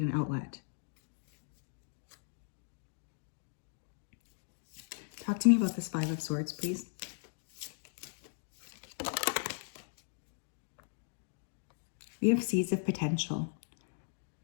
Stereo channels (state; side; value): silent; right; digital silence